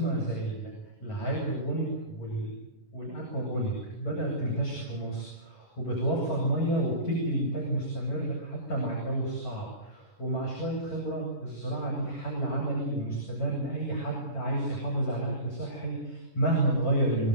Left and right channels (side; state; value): right; late; 10 ms